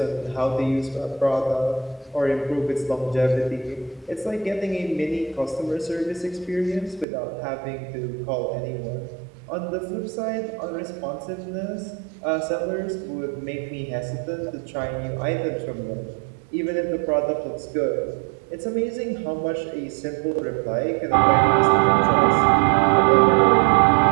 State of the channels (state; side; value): drops out; left; at 7.1 s